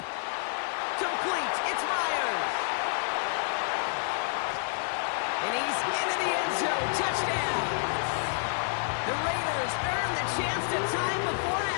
Complete. It's Myers. And he's into the end zone. Touchdown. The Raiders earn the chance to tie before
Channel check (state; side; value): silent; right; digital silence